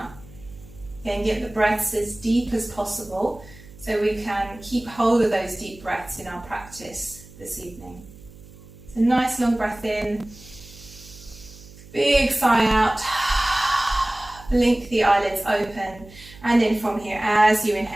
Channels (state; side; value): noise; right; hum, 20 dB below the sound